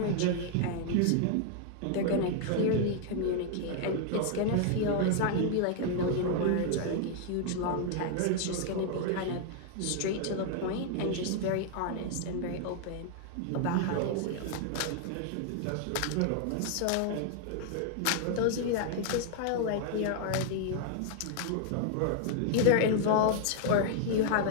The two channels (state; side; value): different; both; correlation 0.00